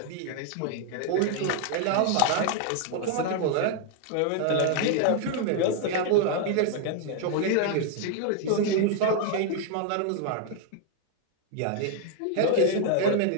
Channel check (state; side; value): different; both; correlation 0.00